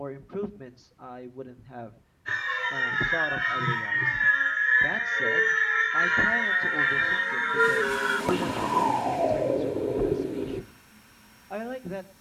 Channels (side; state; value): both; identical; correlation 1.00